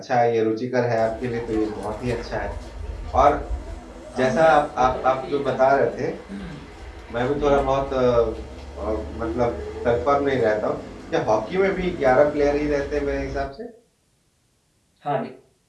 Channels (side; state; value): both; identical; correlation 1.00